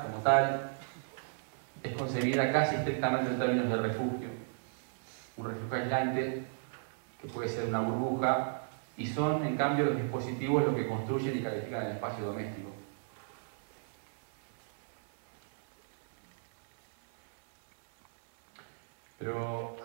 como tal, es concebida casi estrictamente en términos de refugio. Un refugio aislante, que puede ser una burbuja, y son, en cambio, los dispositivos los que construyen y califican el espacio doméstico. Pero,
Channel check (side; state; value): left; silent; 55 dB below the other